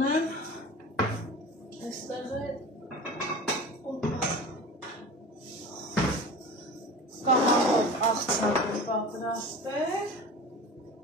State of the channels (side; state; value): both; normal; correlation 0.35